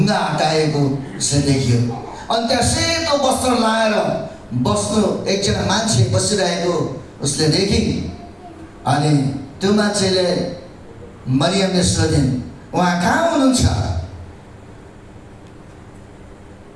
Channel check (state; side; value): identical; both; correlation 1.00